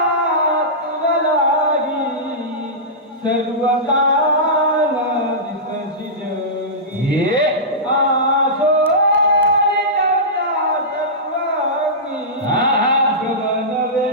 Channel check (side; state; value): both; normal; correlation -0.16